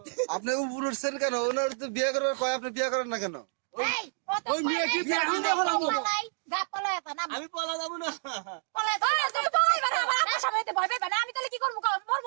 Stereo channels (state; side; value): silent; left; 59 dB below the other